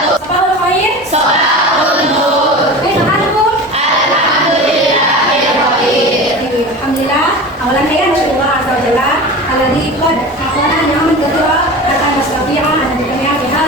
Sabahul khair. Sabahul nur. Alhamdulillah. Alhamdulillah. Awalan saya bersyukur azza wa jalla alladzi qad aqana ni'aman katsira akan mustafi'a an dunya fi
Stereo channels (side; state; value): both; normal; correlation 0.32